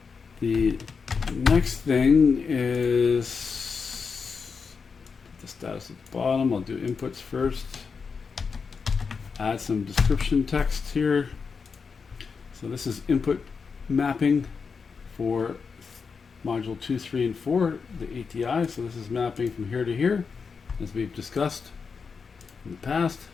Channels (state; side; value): quieter; right; 5.4 dB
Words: The next thing is the status at the bottom. I'll do inputs first. Add some description text here. So this is input mapping for module 2, 3, and 4, the ATI. So this is mapping from here to here, as we've discussed in the past.